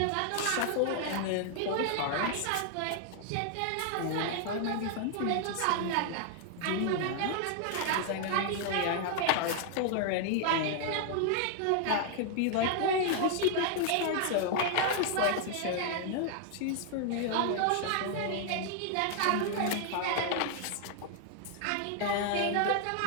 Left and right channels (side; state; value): both; different; correlation 0.00